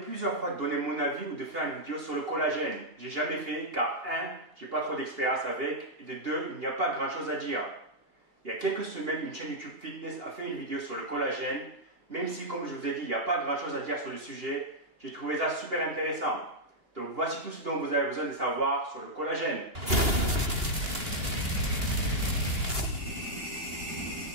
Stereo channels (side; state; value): left; late; 2.8 ms